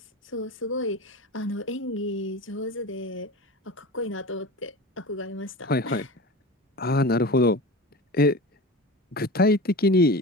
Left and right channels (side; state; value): both; normal; correlation 0.31